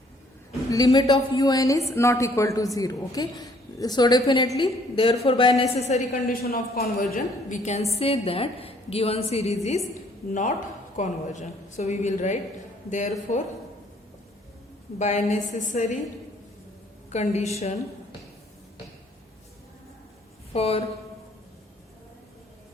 Limit of un is not equal to 0. Okay, so definitely, therefore by necessary condition of conversion, we can say that given series is not convergent. So we will write, therefore by necessary condition for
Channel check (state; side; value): normal; both; correlation 0.62